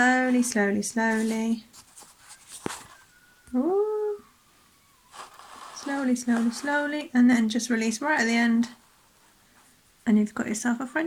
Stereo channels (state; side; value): identical; both; correlation 1.00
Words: slowly, slowly. Ooh. Slowly, slowly, slowly, and then just release right at the end, and you've got yourself a